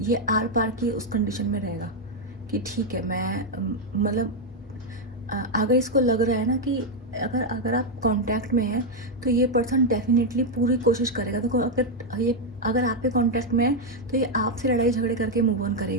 आर पार की उस कंडीशन में रहेगा कि ठीक है, मैं मतलब अगर इसको लग रहा है ना कि अगर आप कांटेक्ट में हैं तो ये पर्सन डेफिनेटली पूरी कोशिश करेगा। देखो अगर आपके कांटेक्ट में है तो ये आपसे लड़ाई झगड़े करके मूव ऑन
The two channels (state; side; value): normal; both; correlation 0.02